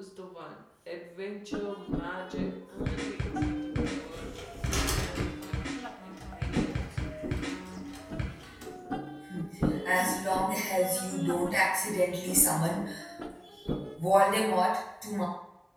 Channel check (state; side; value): identical; both; correlation 1.00